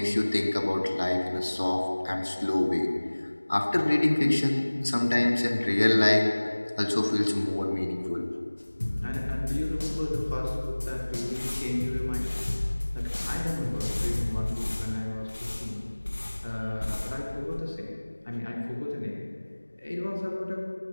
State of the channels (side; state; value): both; inverted; correlation -1.00